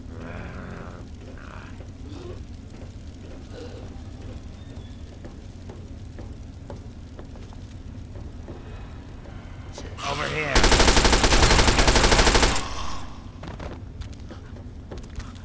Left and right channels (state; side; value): identical; both; correlation 1.00